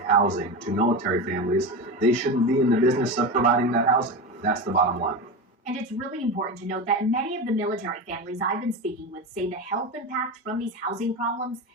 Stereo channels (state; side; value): normal; both; correlation 0.22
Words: housing to military families, they shouldn't be in the business of providing that housing. That's the bottom line. And it's really important to note that many of the military families I've been speaking with say the health impact from these housing problems